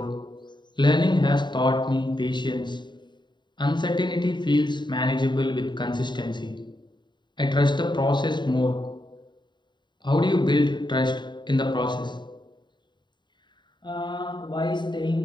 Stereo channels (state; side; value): late; right; 0.22 ms